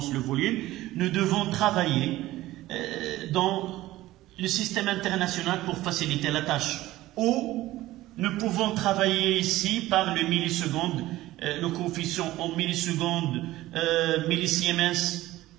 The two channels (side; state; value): left; quieter; 16.5 dB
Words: le volume. Nous devons travailler dans le système international pour faciliter la tâche. Ou nous pouvons travailler ici par le milliseconde, le coefficient en millisecondes, millisiemens